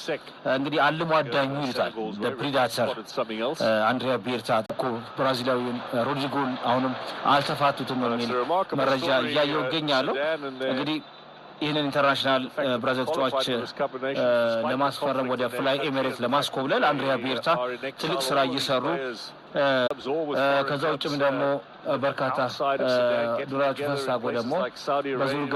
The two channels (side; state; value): both; identical; correlation 1.00